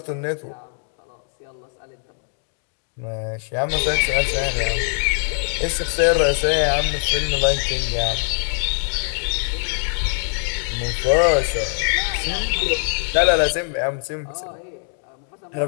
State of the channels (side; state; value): right; silent; 64 dB below the other